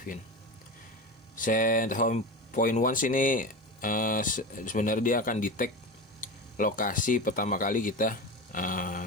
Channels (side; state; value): both; normal; correlation 0.25